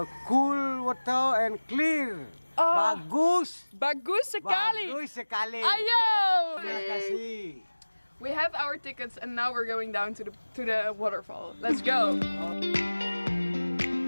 cool water and clear. Bagus. Bagus sekali. Bagus sekali. Ayo! Terima kasih. We have our tickets and now we're going down to the waterfall. Let's go.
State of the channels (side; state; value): both; inverted; correlation -1.00